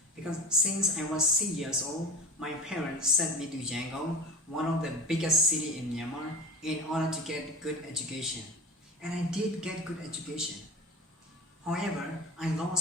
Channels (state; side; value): normal; both; correlation 0.33